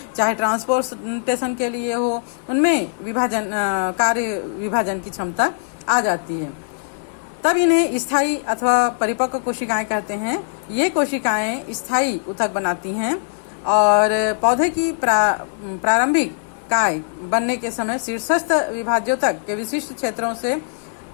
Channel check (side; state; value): right; silent; 63 dB below the other